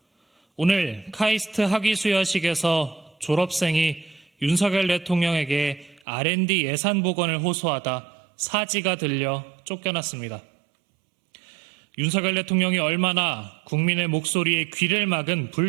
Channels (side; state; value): left; drops out; at 6.0 s